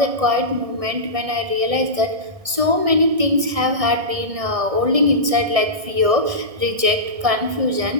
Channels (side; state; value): left; late; 1.6 ms